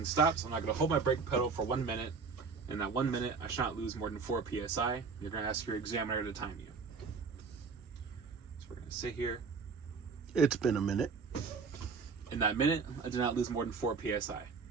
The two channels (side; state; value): left; quieter; 5.0 dB